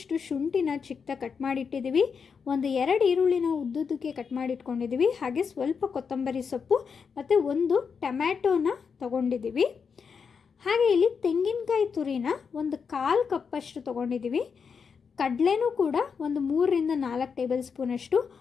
ಶುಂಠಿನ ಚಿಕ್ಕದಾಗಿ ಕಟ್ ಮಾಡಿಟ್ಟಿದ್ದೀವಿ. 2 ಈರುಳ್ಳಿನ ಉದ್ದುದ್ದಕ್ಕೆ ಕಟ್ ಮಾಡಿಟ್ಕೊಂಡಿದ್ದೀವಿ. ಹಾಗೆ ಸ್ವಲ್ಪ ಕೊತ್ತಂಬರಿ ಸೊಪ್ಪು ಮತ್ತು 1 ಟೊಮ್ಯಾಟೋನ ತೊಗೊಂಡಿದ್ದೀವಿ. ಹಾಗೆ ಇಲ್ಲಿ ತೆಂಗಿನಕಾಯಿ ತುರಿನ 1/4 ಕಪ್ಪಷ್ಟು ತೊಗೊಂಡಿದ್ದೀವಿ. ಕಡಲೆನೂ ಕೂಡ 3 ರಿಂದ 4 ಟೇಬಲ್ ಸ್ಪೂನಷ್ಟು,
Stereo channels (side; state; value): right; quieter; 6.0 dB